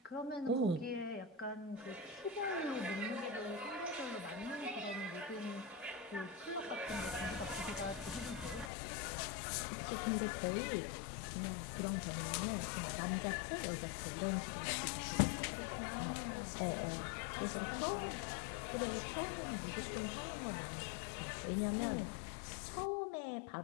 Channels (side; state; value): right; drops out; at 8.7 s